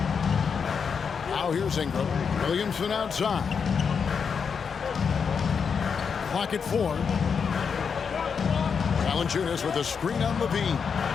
Now here's Ingram. Williamson outside. Clock at 4. Valanciunas with a screen on Levine.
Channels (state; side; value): quieter; right; 6.3 dB